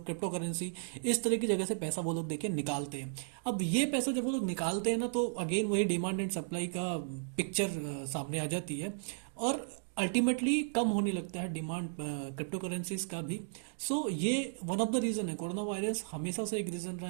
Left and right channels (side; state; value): left; silent; digital silence